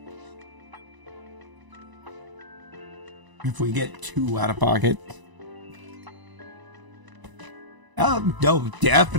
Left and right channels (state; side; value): late; left; 1.0 ms